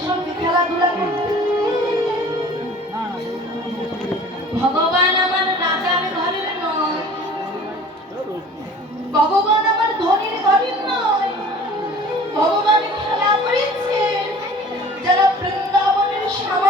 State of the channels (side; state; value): both; normal; correlation 0.46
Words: সঙ্গে খেলাধুলা করতে? ভগবান আমার রাজার ঘরের নয়, ভগবান আমার ধনীর ঘরের নয়। ভগবান খেলা করেছে যারা বৃন্দাবনের